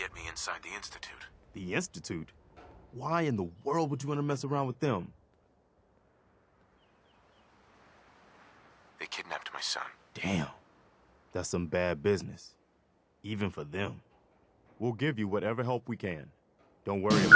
me inside the Institute. The Institute? Why in the world would you want to mess around with them? They kidnapped my son. Damn. That's some bad business. Even for them. We'll give you whatever help we can. Don't worry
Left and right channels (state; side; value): identical; both; correlation 1.00